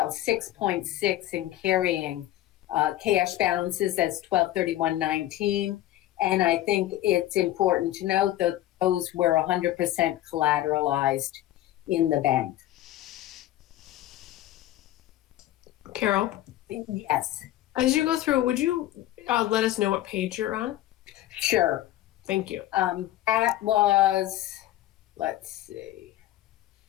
in carrying cash balances as 12/31/19. And I think it's important to note that those were 100% collateralized in the bank. Carol, Yes, as you go through, would you let us know what page you're on? sure. Thank you. That was, let's see,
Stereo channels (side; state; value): right; quieter; 14.4 dB